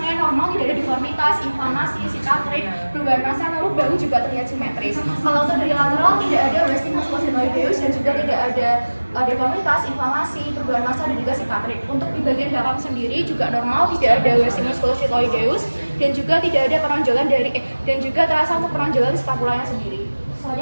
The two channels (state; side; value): inverted; both; correlation -1.00